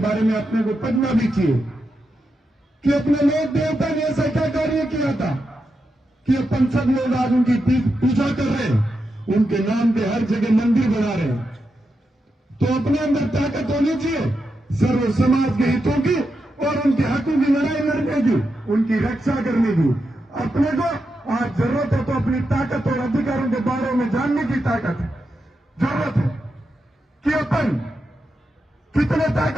में अपने को पढ़ना भी चाहिए कि अपने लोक देवता ने ऐसा क्या कार्य किया था कि अपन सब लोग आज उनकी पूजा कर रहे हैं, उनके नाम पे हर जगह मंदिर बना रहे हैं। तो अपने अंदर ताकत होनी चाहिए सर्व समाज के हितों की और उनके हकों की लड़ाई लड़ने की, उनकी रक्षा करने की। अपने को आज जरूरत है तो अपनी ताकत और अधिकारों के बारे में जानने की ताकत है, जरूरत है कि अपन कितने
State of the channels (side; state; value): both; normal; correlation 0.86